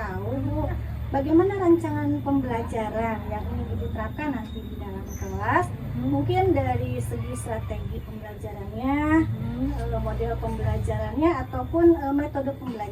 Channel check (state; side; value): identical; both; correlation 1.00